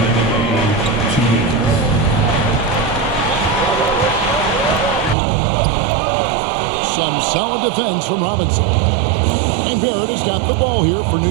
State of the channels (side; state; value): left; drops out; at 5.2 s